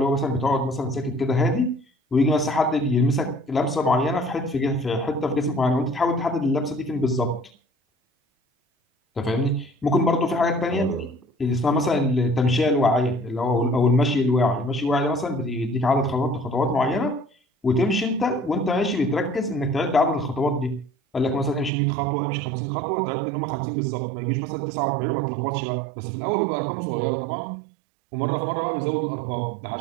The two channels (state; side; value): drops out; left; at 21.7 s